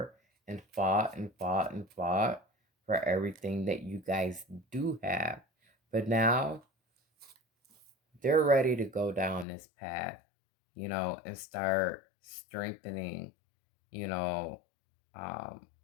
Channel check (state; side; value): drops out; right; at 9.5 s